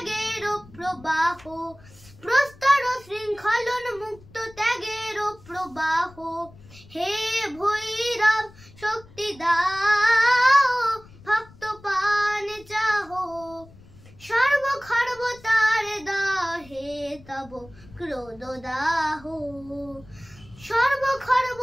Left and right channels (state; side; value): noise; left; rumble, 23 dB below the sound